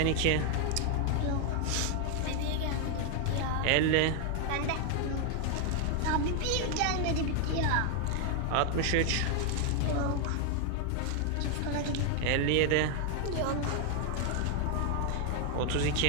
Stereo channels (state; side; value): different; both; correlation 0.00